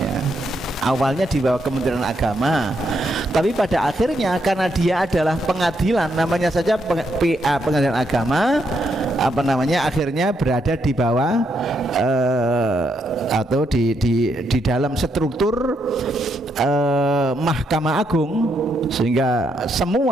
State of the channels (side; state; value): both; normal; correlation 0.78